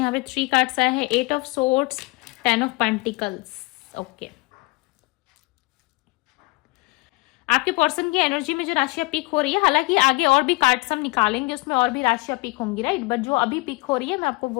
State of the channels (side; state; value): right; quieter; 25.3 dB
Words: पे 3 कार्ड्स आए हैं, 8 of swords, 10 of pentacles. Okay, आपके पर्सन की एनर्जी में जो राशियां पिक हो रही है, हालांकि आगे और भी कार्ड्स हम निकालेंगे, उसमें और भी राशियां पिक होंगी, राइट, बट जो अभी पिक हो रही है मैं आपको